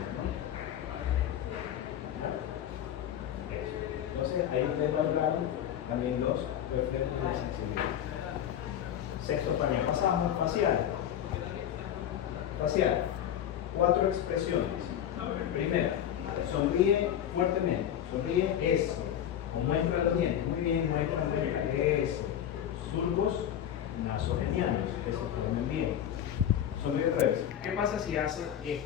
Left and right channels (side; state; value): right; quieter; 10.2 dB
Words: Entonces, ahí ustedes valoraron también los reflejos de sensibilidad. Sexto panel. Pasamos facial. Facial. 4 expresiones. Primera, sonríe fuertemente. Sonríe eso. Muestra los dientes. Muy bien, muestra los dientes. Eso. Surcos nasogenianos. Que se formen bien. Sonríe otra vez. ¿Qué pasa si hace